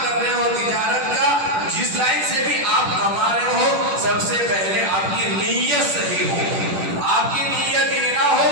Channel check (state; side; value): late; left; 10 ms